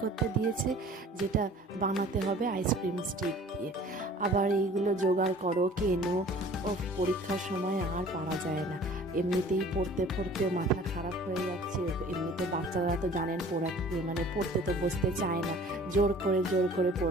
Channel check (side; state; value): both; normal; correlation 0.48